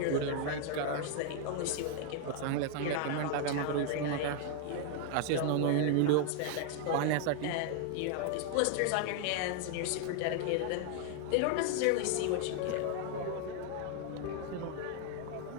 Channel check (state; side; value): different; both; correlation 0.00